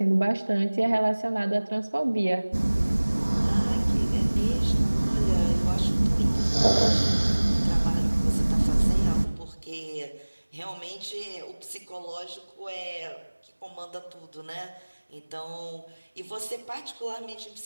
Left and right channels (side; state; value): both; inverted; correlation -1.00